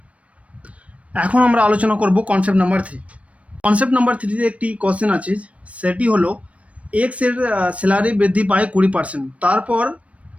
এখন আমরা আলোচনা করব কনসেপ্ট নাম্বার 3। কনসেপ্ট নাম্বার 3-তে একটি কোশ্চেন আছে, সেটি হলো এক্স এর স্যালারি বৃদ্ধি পায় 20%, তারপর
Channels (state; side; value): late; left; 0.064 ms